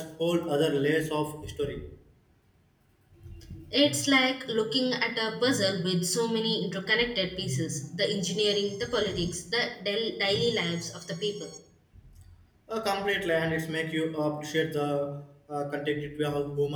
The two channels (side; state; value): both; identical; correlation 1.00